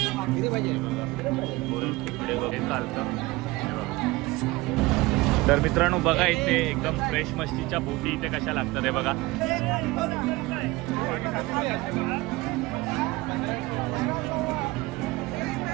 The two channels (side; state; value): left; quieter; 21.2 dB